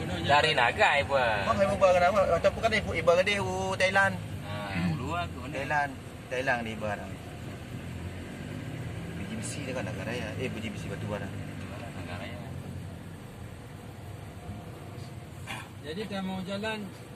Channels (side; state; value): both; identical; correlation 1.00